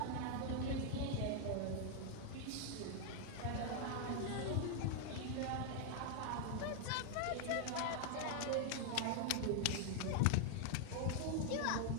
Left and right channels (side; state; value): both; different; correlation 0.00